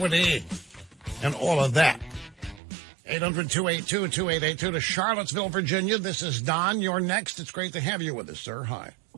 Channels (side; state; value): left; drops out; at 2.6 s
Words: and all of that. 800-282-2882 to Charlottesville, Virginia. This is Don. You're next. It's great to have you with us, sir. Hi.